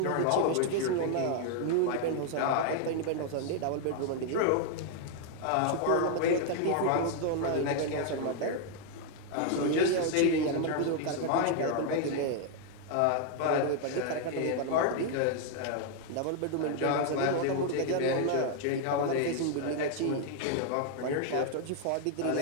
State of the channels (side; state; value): both; different; correlation 0.00